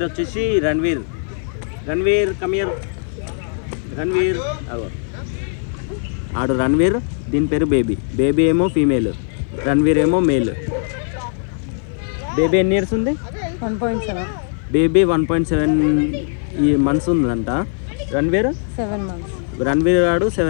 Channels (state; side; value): silent; right; 56 dB below the other